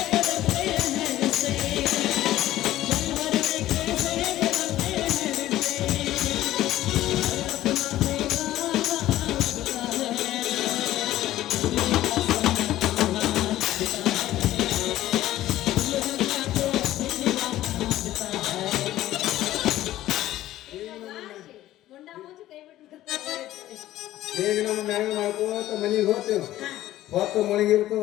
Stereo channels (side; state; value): right; quieter; 14.4 dB